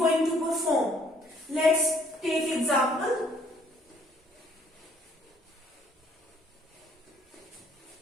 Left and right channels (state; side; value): normal; both; correlation 0.63